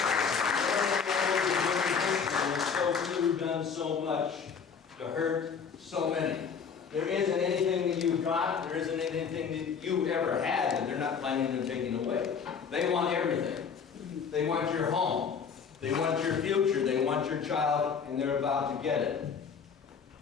You've done so much to hurt so many. There isn't anything that you've got, there isn't anything that you ever had that they're not planning on taking away. They want everything. They want your home. They want your future. They want your child, and they're about to get it.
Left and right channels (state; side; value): quieter; right; 6.3 dB